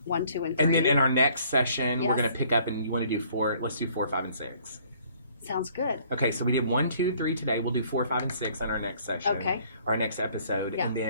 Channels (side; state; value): both; inverted; correlation -0.59